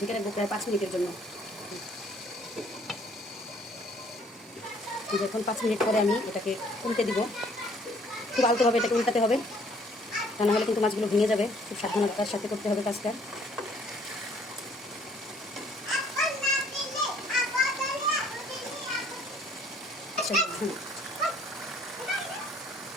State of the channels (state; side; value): normal; both; correlation 0.60